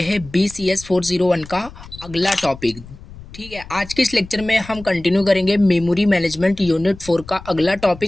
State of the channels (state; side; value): noise; left; rumble, 17 dB below the sound